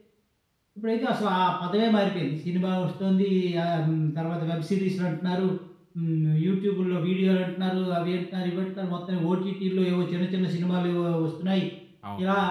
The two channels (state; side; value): identical; both; correlation 1.00